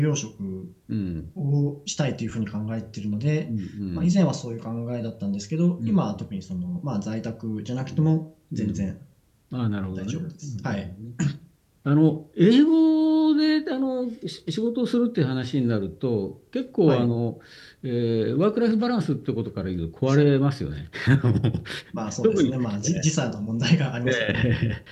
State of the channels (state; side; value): identical; both; correlation 1.00